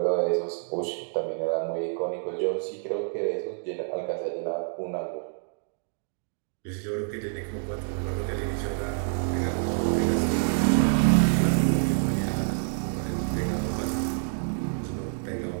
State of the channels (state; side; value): silent; left; digital silence